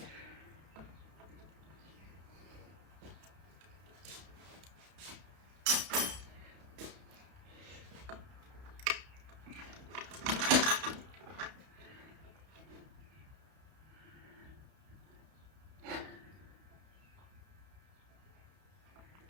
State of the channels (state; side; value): late; left; 32 ms